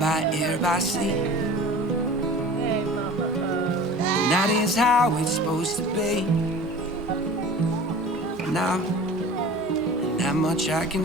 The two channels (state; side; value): normal; both; correlation 0.39